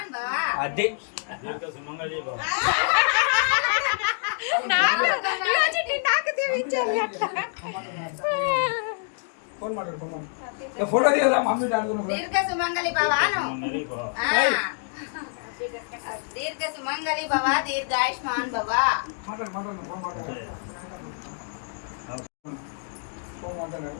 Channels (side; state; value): right; silent; 61 dB below the other